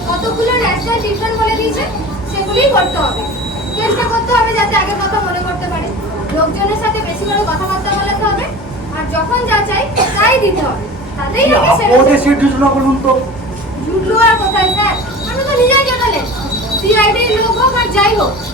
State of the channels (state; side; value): normal; both; correlation 0.36